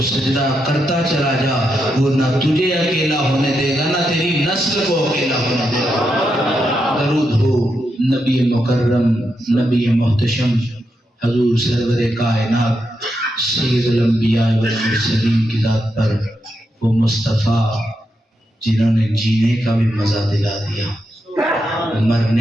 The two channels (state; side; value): normal; both; correlation 0.84